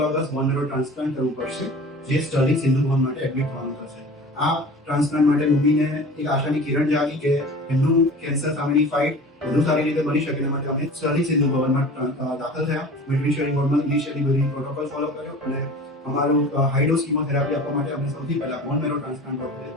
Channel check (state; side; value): normal; both; correlation 0.40